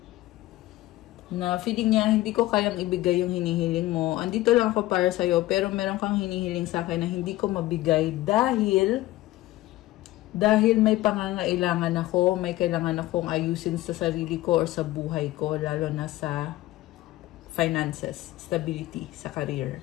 Na feeling niya, hindi ko kayang ibigay yung hinihiling mo. Andito lang ako para sa'yo, pero meron kang hinihiling sa akin na hindi ko mabigay dahil may pangangailangan ako, may kailangan akong ayusin sa sarili ko or sa buhay ko, lalo na sa finances, stability, sa career.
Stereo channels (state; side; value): quieter; right; 17.0 dB